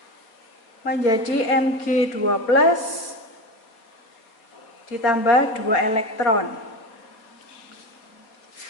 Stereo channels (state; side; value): late; right; 4.3 ms